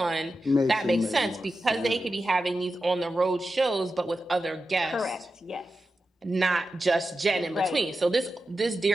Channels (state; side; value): normal; both; correlation 0.91